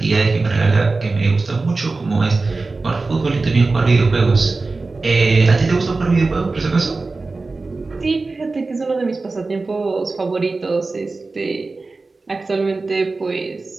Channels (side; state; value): left; quieter; 3.7 dB